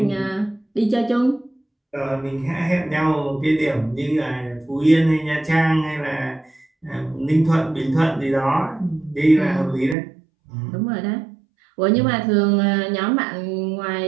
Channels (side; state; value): left; drops out; at 10.0 s